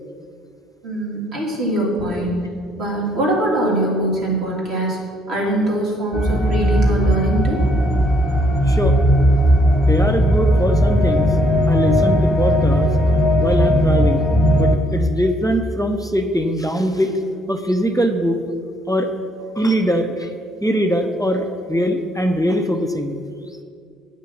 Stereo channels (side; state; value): both; normal; correlation 0.69